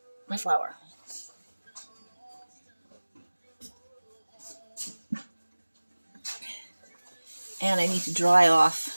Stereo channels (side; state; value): both; inverted; correlation -1.00